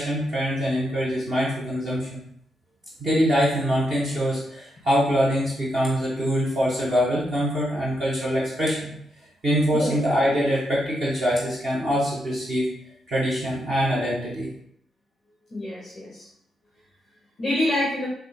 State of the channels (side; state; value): both; normal; correlation 0.81